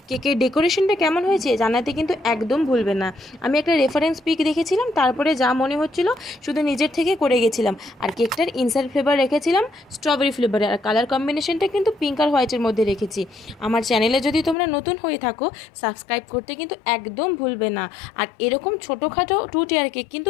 কেকের ডেকোরেশনটা কেমন হয়েছে জানাতে কিন্তু একদম ভুলবে না। আমি একটা রেফারেন্স পিক দেখেছিলাম, তারপরে যা মনে হচ্ছিল শুধু নিজের থেকে করে গেছিলাম। আর কেকটার ইনসাইড ফ্লেভার রেখেছিলাম স্ট্রবেরি ফ্লেভারে, আর কালার কম্বিনেশনটা কিন্তু পিঙ্ক আর হোয়াইটের মধ্যে রেখেছি। আমার চ্যানেলে যদি তোমরা নতুন হয়ে থাকো সাবস্ক্রাইব করতে কিন্তু একদম ভুলবে না। আর এরকম ছোটোখাটো 2 টিয়ার কেক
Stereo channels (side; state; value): right; drops out; at 14.6 s